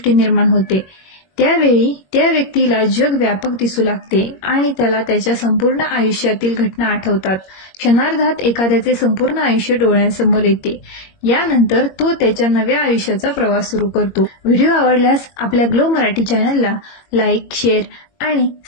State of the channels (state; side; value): late; right; 21 ms